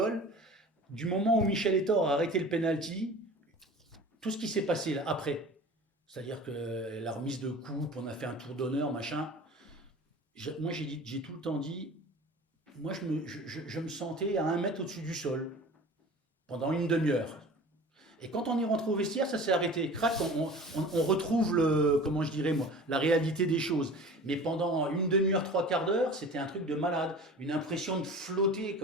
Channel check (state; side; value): normal; both; correlation 0.40